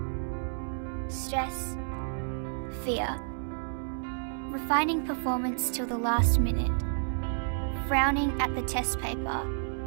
stress, fear. Refining performance till the last minute. Frowning at the test paper.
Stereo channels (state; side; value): silent; left; 57 dB below the other